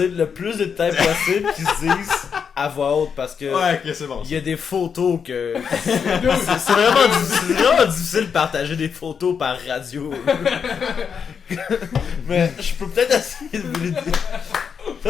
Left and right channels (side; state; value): right; quieter; 6.7 dB